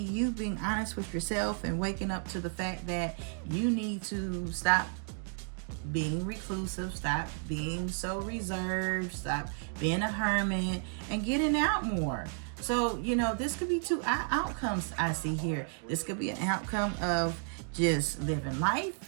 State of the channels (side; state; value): left; silent; 56 dB below the other